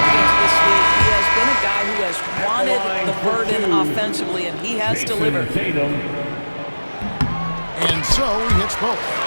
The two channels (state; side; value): inverted; both; correlation -1.00